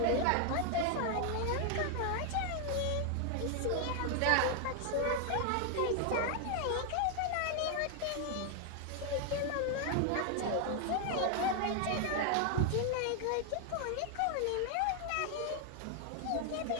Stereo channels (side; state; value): both; different; correlation 0.00